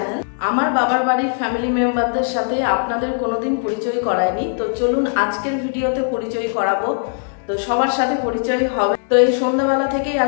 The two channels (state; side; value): silent; right; 63 dB below the other